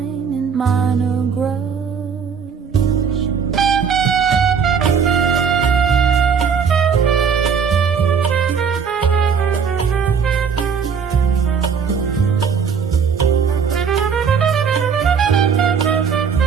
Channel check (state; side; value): quieter; left; 6.5 dB